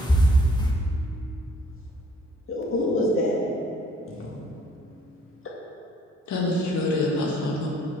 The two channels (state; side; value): normal; both; correlation 0.60